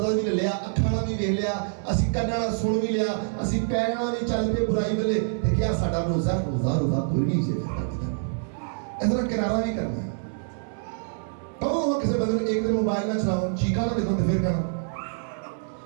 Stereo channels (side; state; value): left; silent; 61 dB below the other